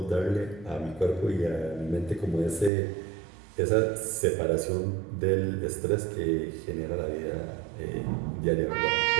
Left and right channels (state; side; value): drops out; left; at 2.7 s